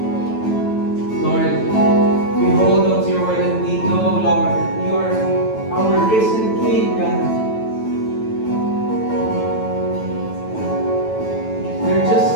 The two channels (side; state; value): right; late; 9.1 ms